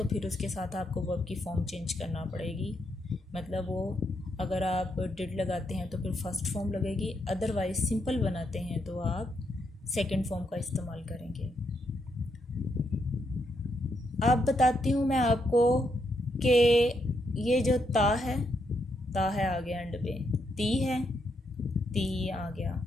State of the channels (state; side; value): normal; both; correlation 0.79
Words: फिर उसके साथ आपको वर्ब की फॉर्म चेंज करना पड़ेगी। मतलब वो अगर आप डिड लगाते हैं तो फिर फर्स्ट फॉर्म लगेगी, अदरवाइज सिंपल बनाते हैं तो आप सेकंड फॉर्म का इस्तेमाल करेंगे। अब बताती हूँ मैं आपको कि ये जो ता है आ गया एंड पे, ती है, ती आ गया।